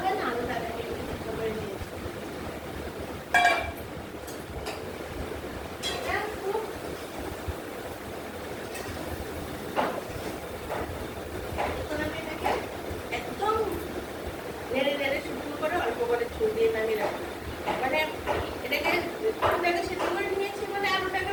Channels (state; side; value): identical; both; correlation 1.00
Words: হয় না, আলুটাকে আমি একটু সিদ্ধ করে নিয়েছি। একদম নেড়ে নেড়ে শুকনো করে অল্প করে ছুঁ দিয়ে নামিয়ে রাখবো। মানে এটাকে আলুটাকে সিদ্ধ করে নিয়েছি, মানে আলুটাকে